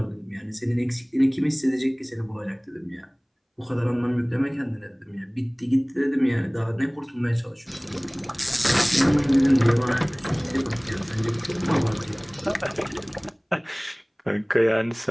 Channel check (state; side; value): identical; both; correlation 1.00